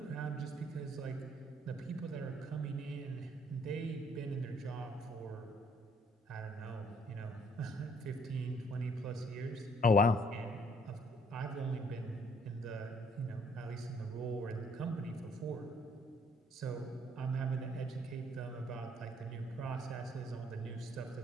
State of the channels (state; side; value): normal; both; correlation 0.63